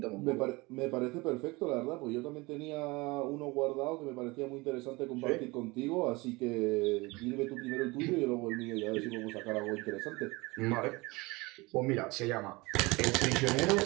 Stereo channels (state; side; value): quieter; left; 23.8 dB